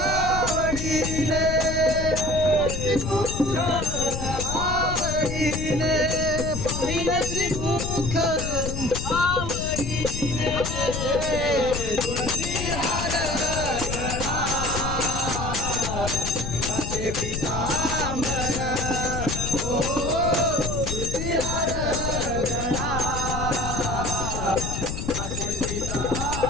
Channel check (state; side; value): noise; left; rumble, 4 dB below the sound